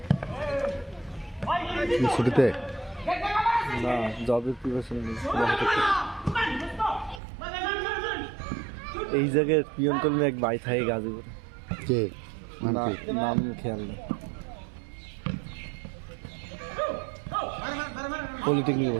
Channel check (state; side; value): drops out; left; at 7.2 s